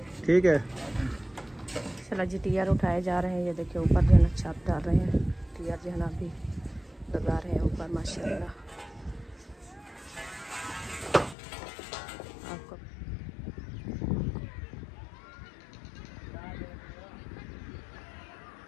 ठीक है चला जी टियर उठाए जा रहे हैं। ये देखिए ऊपर जो है ना छत डाल रहे हैं, टियर जो है ना अभी लगा रहे हैं ऊपर माशाल्लाह। आपको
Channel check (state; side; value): drops out; right; at 11.4 s